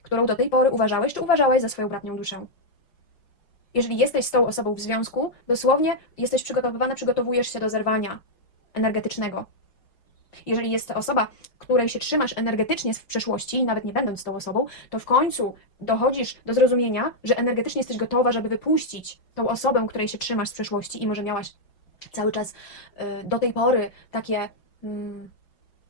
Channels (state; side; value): late; right; 5.4 ms